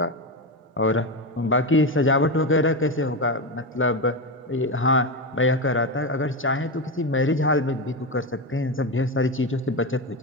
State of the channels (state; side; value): normal; both; correlation 0.15